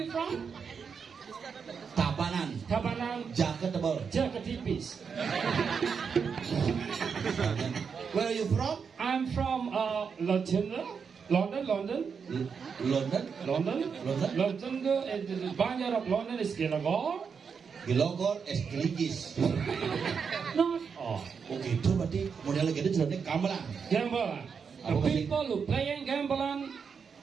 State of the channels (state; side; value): quieter; left; 6.1 dB